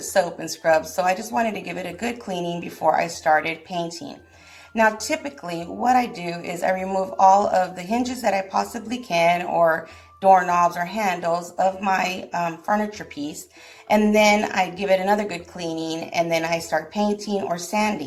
and scrubs. So I just wanted to give it a good cleaning before I started painting. Now, typically what I do is I remove all of the hinges that I possibly can, or doorknobs or handles of my furniture piece, and then I give it another good cleaning, and then I start painting or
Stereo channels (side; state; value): both; identical; correlation 1.00